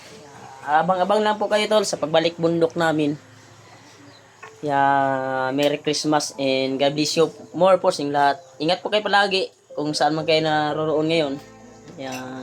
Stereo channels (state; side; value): identical; both; correlation 1.00